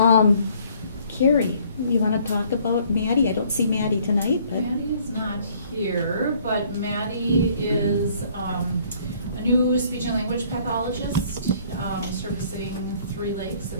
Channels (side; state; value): both; inverted; correlation -0.60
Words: Carrie, you want to talk about Maddie? I don't see Maddie tonight, but Maddie is not here, but Maddie is a new speech and language pathologist servicing Three Lakes,